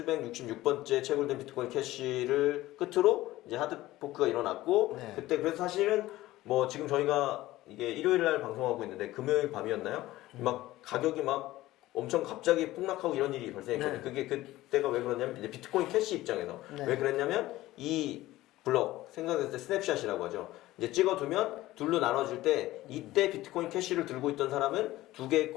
6,766번째 채굴된 비트코인 캐시를 끝으로 이제 하드포크가 일어났고 네. 그때 그래서 사실은 뭐 지금 저희가 이게 일요일 날 방송하고 있는데 금요일 밤이었나요? 막 가격이 막 엄청 갑자기 폭락하고 이런 일이 발생했거든요. 네. 그게 그때가 왜 그러냐면 이제 비트코인 캐시 입장에서 네. 왜 그랬냐면 이 블럭 생각했을 때 스냅샷이라고 하죠. 이제 찍어두면 둘로 나눠질 때 이때 비트코인 캐시를 들고 있던 사람은 두 개의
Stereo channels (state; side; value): quieter; right; 16.7 dB